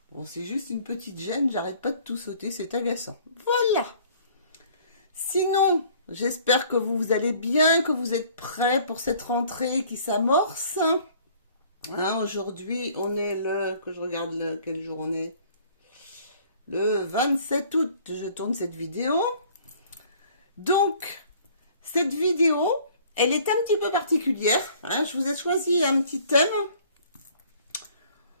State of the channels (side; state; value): both; inverted; correlation -0.54